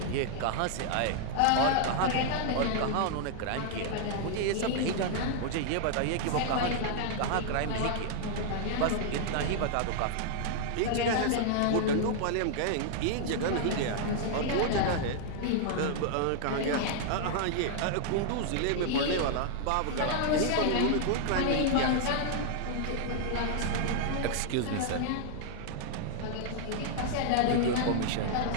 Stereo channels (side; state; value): both; different; correlation -0.01